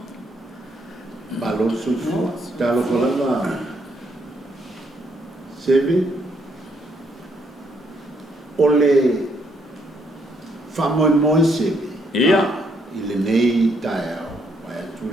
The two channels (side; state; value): both; normal; correlation 0.73